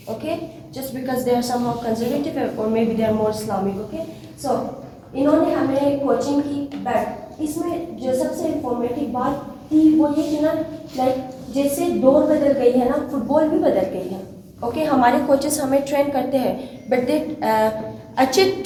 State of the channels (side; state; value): both; identical; correlation 1.00